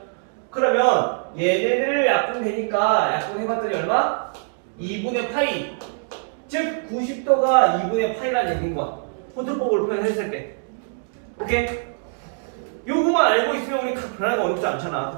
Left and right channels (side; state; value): left; silent; digital silence